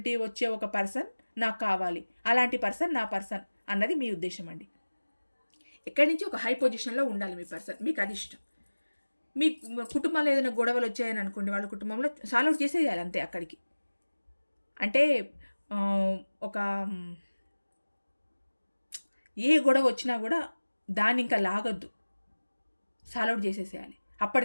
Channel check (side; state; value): both; inverted; correlation -1.00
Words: వచ్చే ఒక పర్సన్ నాకు కావాలి. అలాంటి పర్సన్ నా పర్సన్ అన్నది మీ ఉద్దేశం అండి. ఎక్కడి నుంచి ఒక హై పొజిషన్లో ఉండాలి మీ పర్సన్, మీకు అది ఇష్టం. మీ కుటుంబంలో ఏదైనా గొడవలు వచ్చాయని అనుకోండి, వాళ్ళ కుటుంబంలో సాల్వ్ అవుట్ చేసేయాలి అంతే అక్కడికి. అంటే ఒక ఏ గొడవ వచ్చినా కూడా దాన్ని ఇంకా లాగొద్దు, సాల్వ్ అవుట్ చేసేసేయాలి.